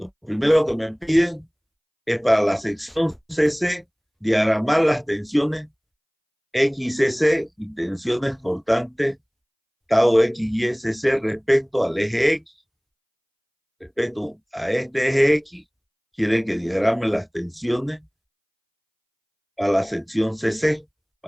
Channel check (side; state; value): both; identical; correlation 1.00